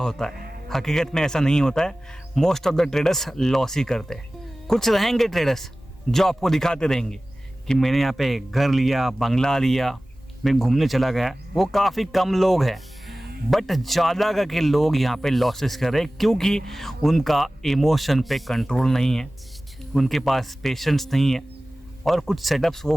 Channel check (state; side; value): normal; both; correlation 0.97